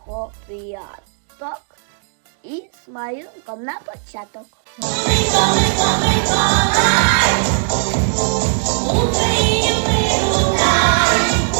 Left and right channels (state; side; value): silent; left; digital silence